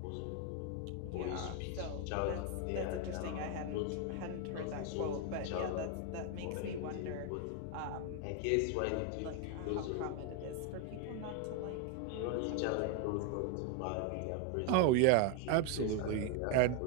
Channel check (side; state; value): both; different; correlation 0.01